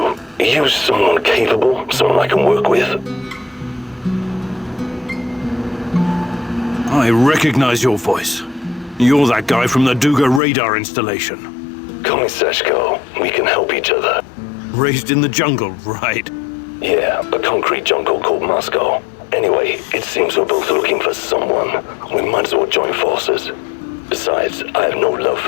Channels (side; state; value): right; drops out; at 10.4 s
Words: Are you someone capable? Someone I can work with? I recognize your voice. You're that guy from the Duga radar installation. Call me Seshko. We can help each other. Raised in the jungle, right? Yeah, a concrete jungle called Moscow. Anyway, it seems we're both looking for someone. We might as well join forces. Besides, I have no love